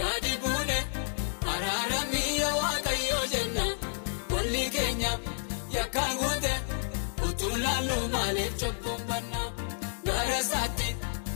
gadi buune araaramii yaa Waaqayyo jenna walli keenya yakkaan guute utuu laallu maaliif cubbuun banna gara isaatti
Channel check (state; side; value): silent; right; digital silence